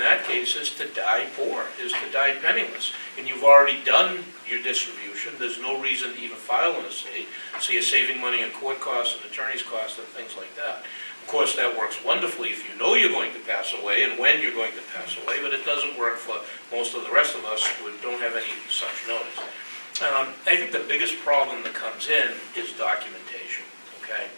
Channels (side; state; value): both; inverted; correlation -1.00